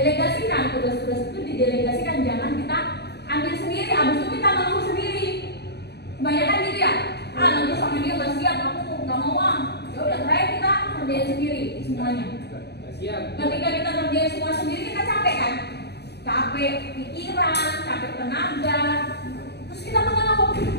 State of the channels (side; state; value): right; late; 0.48 ms